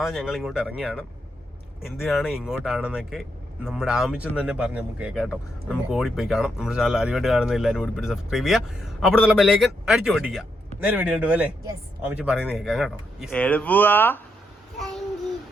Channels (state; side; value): normal; both; correlation 0.80